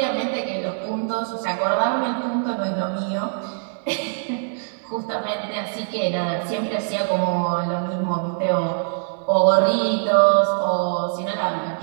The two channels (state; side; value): silent; left; 63 dB below the other